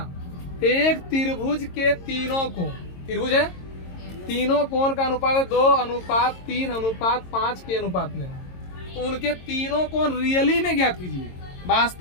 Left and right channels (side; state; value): right; late; 22 ms